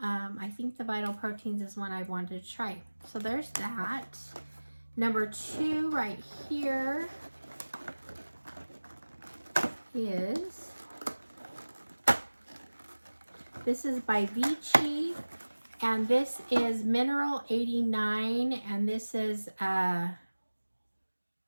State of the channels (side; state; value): both; inverted; correlation -1.00